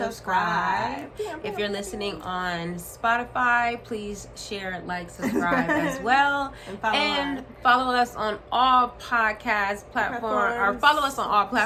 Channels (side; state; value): both; identical; correlation 1.00